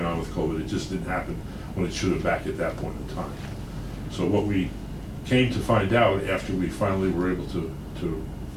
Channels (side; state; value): both; identical; correlation 1.00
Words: on with COVID, it just didn't happen when it should have back at that point in time. So what we came to find out after we finally were able to